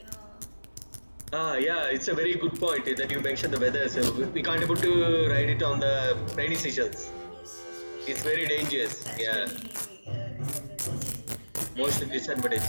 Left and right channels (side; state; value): both; inverted; correlation -1.00